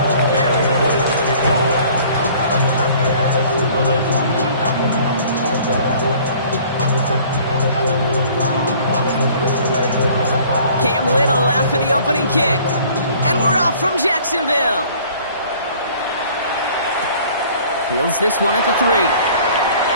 Cam Little after the opening kick. And we're off from Jacksonville. Fields this one at the 3.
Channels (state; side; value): inverted; both; correlation -0.52